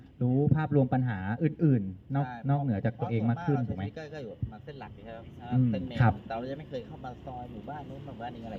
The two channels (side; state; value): both; identical; correlation 1.00